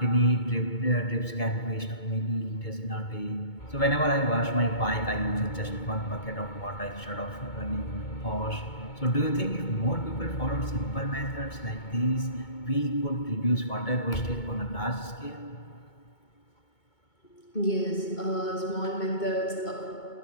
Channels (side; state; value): right; late; 2.2 ms